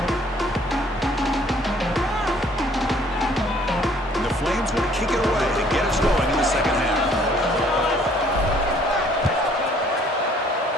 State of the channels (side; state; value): both; normal; correlation 0.60